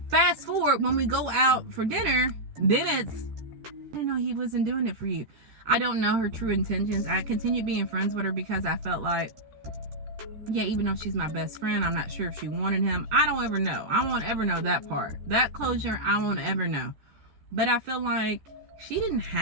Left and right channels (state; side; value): late; left; 13 ms